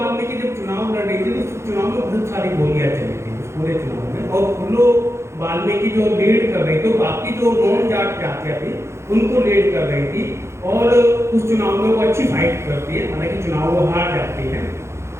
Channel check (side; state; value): left; late; 0.13 ms